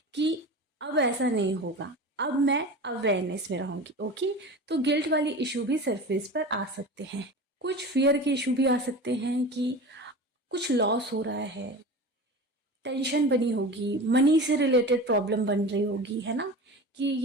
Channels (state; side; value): normal; both; correlation 0.32